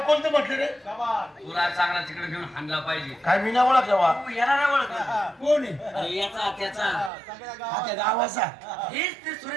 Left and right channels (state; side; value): drops out; left; at 7.1 s